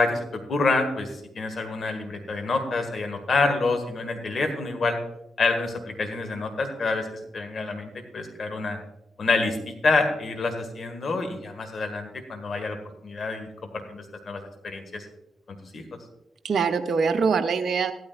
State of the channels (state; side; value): normal; both; correlation 0.81